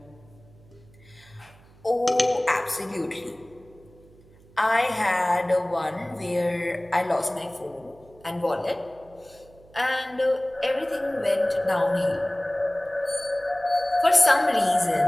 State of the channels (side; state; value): right; noise; hum, 26 dB below the sound